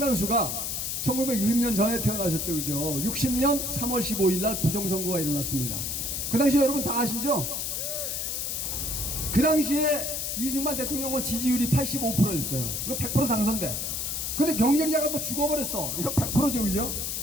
1960년 전에 태어나셨죠, 그죠? 60년 3월 15일 날 부정선거가 일어났습니다. 그 당시에 여러분 다 아시죠? 그 당시에 이승만 대통령은 지지율이 85%였어요. 이거 100% 당선돼. 근데 경쟁자가 또 죽어버렸어. 이거 100%죠, 그죠?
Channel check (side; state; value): left; noise; hiss, 2 dB below the sound